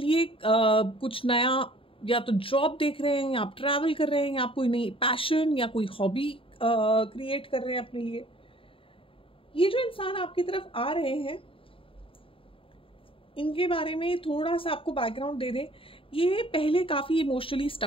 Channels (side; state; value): right; late; 0.26 ms